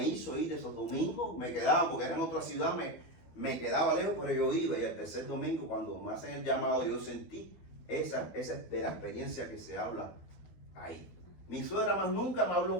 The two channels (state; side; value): late; right; 12 ms